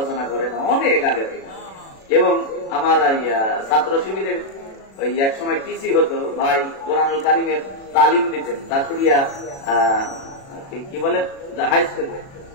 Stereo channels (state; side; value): late; right; 36 ms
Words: করে না, অনেক আগে থেকে। এবং আমার ছাত্র শিবিরের ওই এক সময় টিসি হতো ভাই, কোরআনুল কারিমের তালিম দিতেন দাসুরিয়া কি বলে হাই স্কুলে,